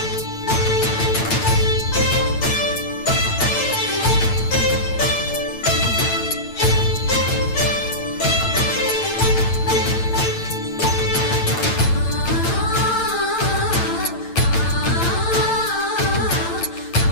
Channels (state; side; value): late; right; 8.9 ms